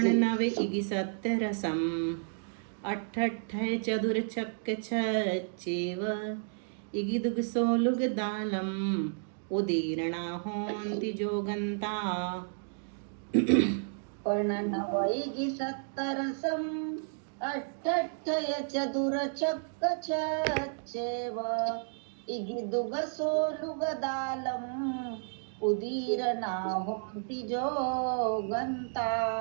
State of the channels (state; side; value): silent; left; digital silence